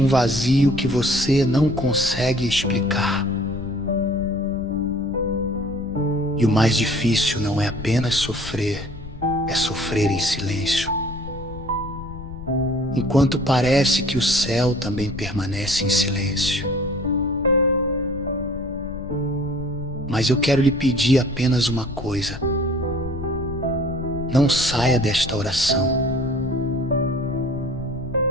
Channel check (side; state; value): left; noise; rumble, 12 dB below the sound